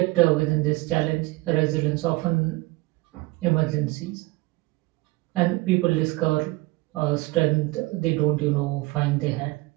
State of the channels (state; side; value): quieter; left; 22.2 dB